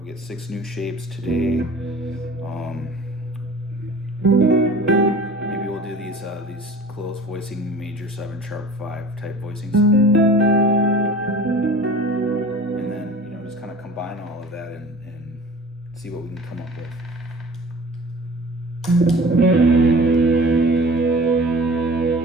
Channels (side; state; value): both; normal; correlation 0.43